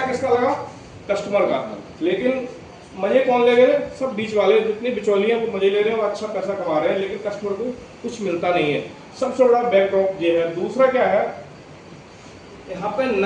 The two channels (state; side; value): identical; both; correlation 1.00